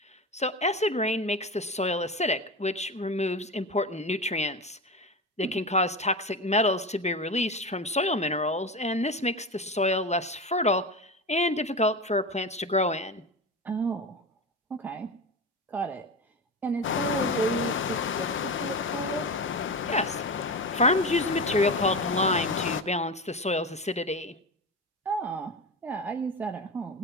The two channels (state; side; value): normal; both; correlation 0.23